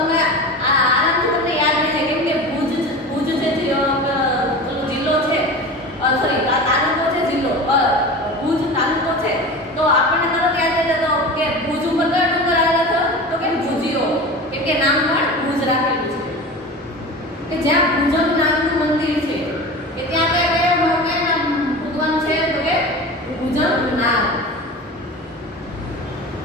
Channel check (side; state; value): both; normal; correlation 0.32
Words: આરામથી તમને યાદ રહેશે કેમ કે ભુજ જે જિલ્લો છે સોરી તાલુકો છે જિલ્લો ભુજ તાલુકો છે. તો આપણને તરત યાદ રહે તો કે ભુજ ઉપર કયો ડુંગર આવેલો છે તો કે ભુજિયો. કેમ કે નામ પણ ભુજ રાખેલું છે કે જ્યાં ભુજંગ નામનું મંદિર છે કે ત્યાં કયા ભગવાન છે તો કે ભુજંગ નાગ.